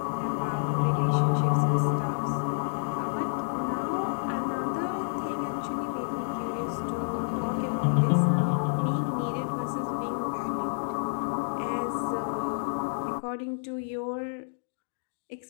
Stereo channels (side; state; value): right; silent; digital silence